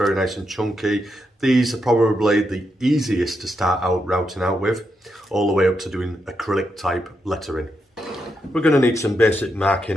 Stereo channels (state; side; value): normal; both; correlation 0.83